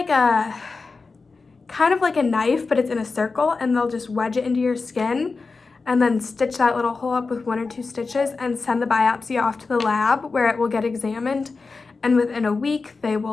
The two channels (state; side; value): quieter; right; 4.2 dB